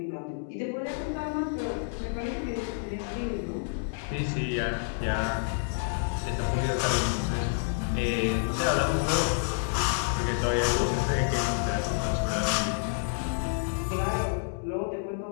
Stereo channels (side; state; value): right; silent; 59 dB below the other